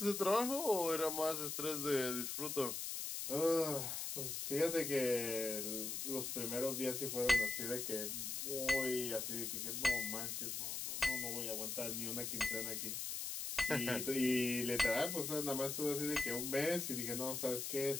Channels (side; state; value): left; noise; hiss, 3 dB below the sound